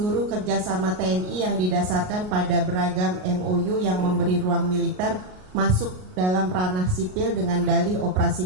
kerjasama TNI yang didasarkan pada beragam MOU yang memberi ruang militer masuk dalam ranah sipil dengan dalih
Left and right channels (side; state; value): left; late; 38 ms